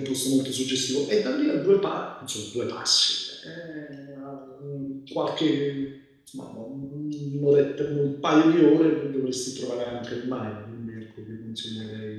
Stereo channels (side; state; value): both; identical; correlation 1.00